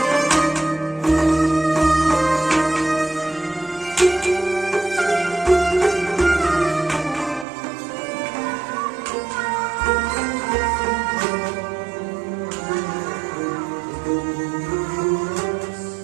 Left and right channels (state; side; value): drops out; left; at 7.5 s